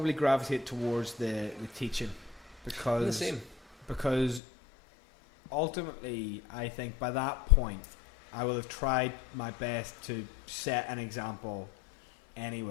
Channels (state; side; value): drops out; right; at 4.4 s